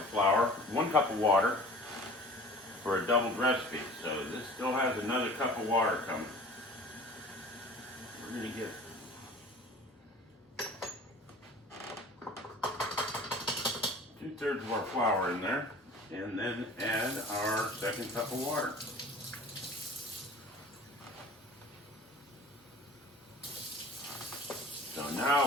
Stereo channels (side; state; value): both; normal; correlation 0.44